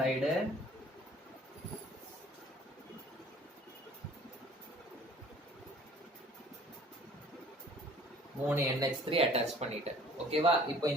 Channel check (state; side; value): normal; both; correlation 0.52